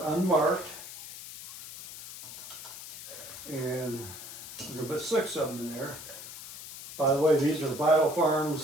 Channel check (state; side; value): noise; left; hiss, 12 dB below the sound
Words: unmarked. And I'm going to put 6 of them in there. By the way, these are Vital